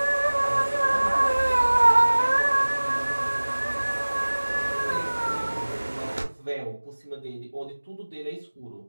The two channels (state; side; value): inverted; both; correlation -1.00